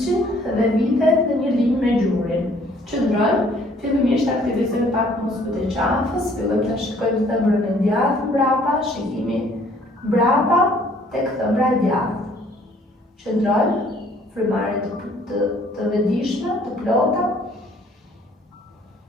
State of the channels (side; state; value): both; normal; correlation 0.59